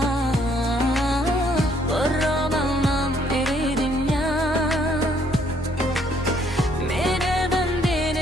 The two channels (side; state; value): both; normal; correlation 0.67